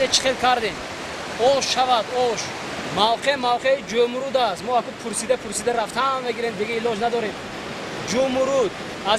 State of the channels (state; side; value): identical; both; correlation 1.00